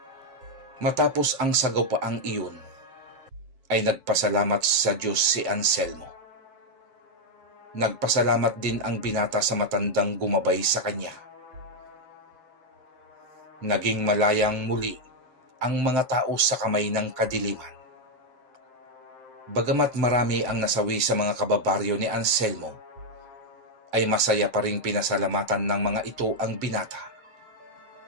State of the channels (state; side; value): late; left; 7.7 ms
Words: Matapos ang sagawpaang iyon, ay nagpasalamat sa Diyos si Anselmo. Nagpasalamat din ang binata sa matandang gumabay sa kanya. Naging malayang muli ang mga tao sa kamay ng kadiliman. Bagamat marami ang nasawi sa mga kababaryo ni Anselmo, ay masaya pa ring pinasalamatan ng mga ito ang binata.